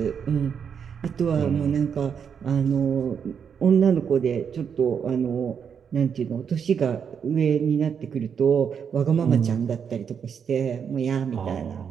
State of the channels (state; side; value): quieter; left; 7.2 dB